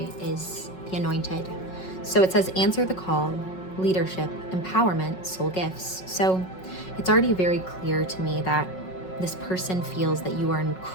is the Anointed. So it says, answer the call, leadership, empowerment, soul gifts. So it's already very clear to me that this person feels that you are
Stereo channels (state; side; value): late; right; 5.4 ms